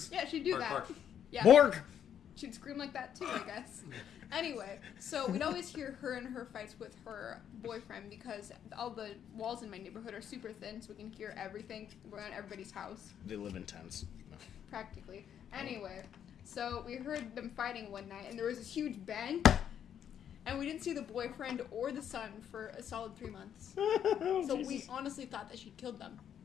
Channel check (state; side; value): quieter; right; 9.2 dB